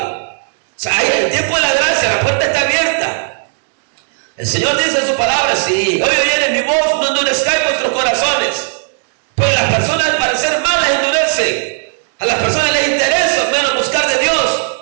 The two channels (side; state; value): left; silent; 70 dB below the other